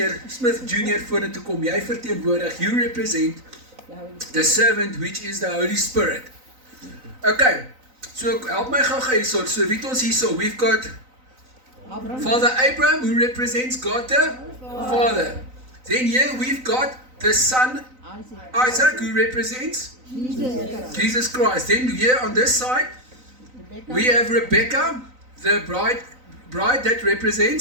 vorentoe kom, jy verteenwoordig, you represent the servant which is the Holy Spirit. Okay, so help my gou hierso, so wie het ons hierso, we've got Father Abraham who represents God the Father. Then here we've got the son Isaac who represents Jesus Christ. Then here on this side we have Rebecca, the bride that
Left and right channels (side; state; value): left; late; 3.9 ms